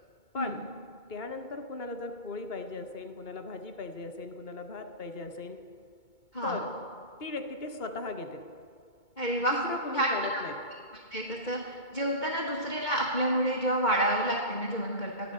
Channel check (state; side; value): late; right; 2.2 ms